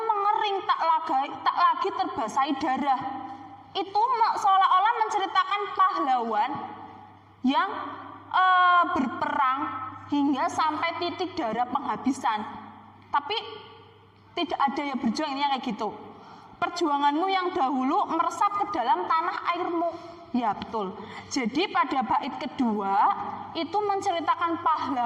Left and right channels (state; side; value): identical; both; correlation 1.00